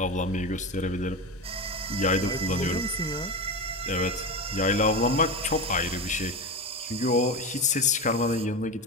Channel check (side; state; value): both; normal; correlation 0.21